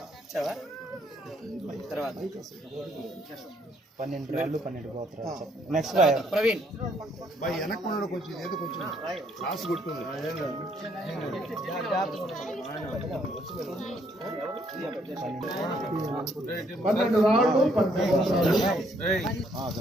తర్వాత 12 రాళ్ళు 12 గోత్రాలు. నెక్స్ట్ ప్రవీణ్ వెనక్కున్నాడు కొంచెం ఏదో కొంచెం రాసి కొట్టుకుంది. 12 రాళ్ళు 12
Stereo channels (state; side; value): normal; both; correlation 0.69